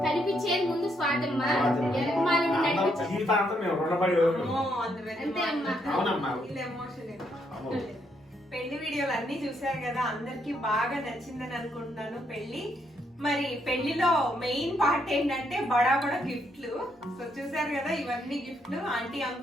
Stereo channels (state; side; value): normal; both; correlation 0.75